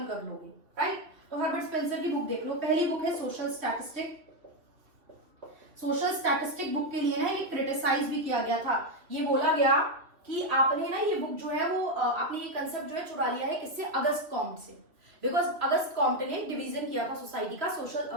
कर लोगे, राइट। तो हर्बर्ट स्पेंसर की बुक देख लो। पहली बुक है social statistic. Social statistic book के लिए ना ये क्रिटिसाइज भी किया गया था। ये बोला गया कि आपने ना ये बुक जो है वो आपने ये कंसेप्ट जो है चुरा लिया है किससे? अगस्त कॉम्ट से। बिकॉज अगस्त कॉम्ट ने डिवीजन किया था सोसाइटी का, सोशल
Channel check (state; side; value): late; left; 2.8 ms